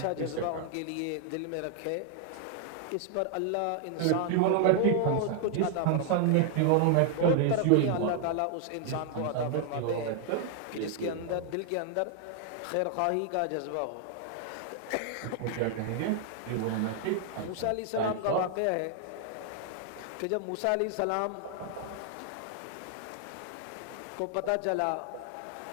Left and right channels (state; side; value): different; both; correlation 0.00